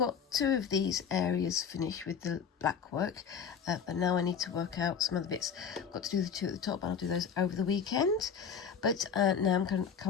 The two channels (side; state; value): right; quieter; 6.8 dB